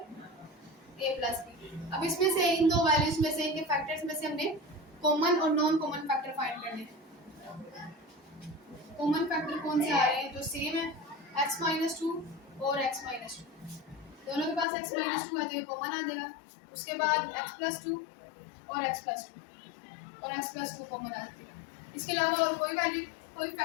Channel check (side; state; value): right; drops out; at 14.7 s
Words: प्लस b। अब इसमें से इन दो वैल्यूज में से, इनके फैक्टर्स में से हमने कॉमन और नॉन कॉमन फैक्टर फाइंड करने हैं। कॉमन फैक्टर कौन से आ रहे हैं जो सेम है, x माइनस 2 और x माइनस 2। दोनों के पास x माइनस 2 है तो ये कॉमन आ जाएगा। उसके बाद x प्लस 2 और x प्लस 2 और x प्लस 2 कॉमन आ जाएगा। इसके अलावा और कोई वैल्यू, कोई